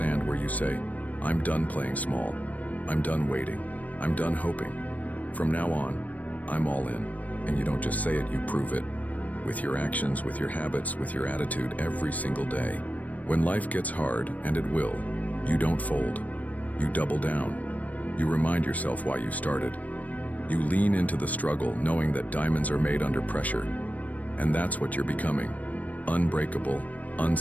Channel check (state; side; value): late; right; 0.072 ms